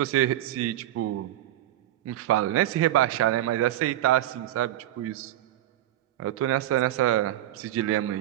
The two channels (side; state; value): left; quieter; 13.6 dB